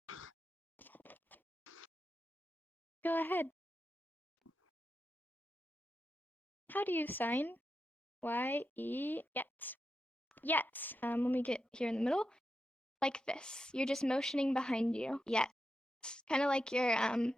Go ahead. How do you sign? Y-E, yes. Yes. Let me get here in the middle. Like this. You're just motioning behind you. Yes. Kind of like your,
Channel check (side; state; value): both; normal; correlation 0.88